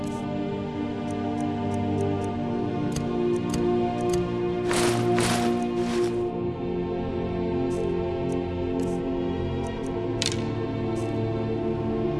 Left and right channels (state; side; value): identical; both; correlation 1.00